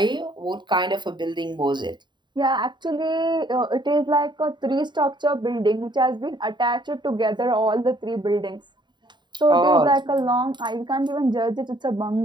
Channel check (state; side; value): late; left; 0.22 ms